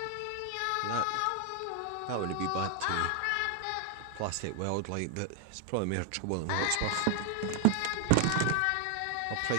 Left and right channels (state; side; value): different; both; correlation 0.00